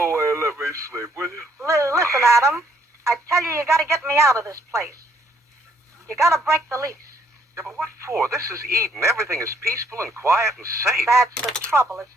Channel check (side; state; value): both; normal; correlation 0.67